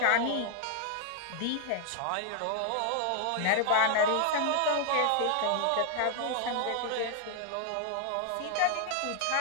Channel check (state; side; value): different; both; correlation 0.00